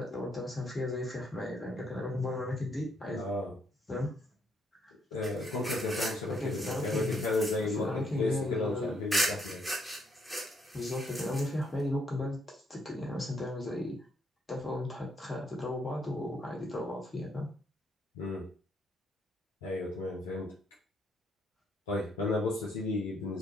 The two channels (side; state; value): both; normal; correlation 0.72